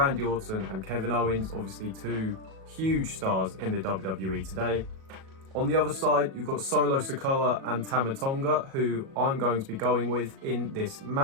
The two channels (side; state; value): left; late; 37 ms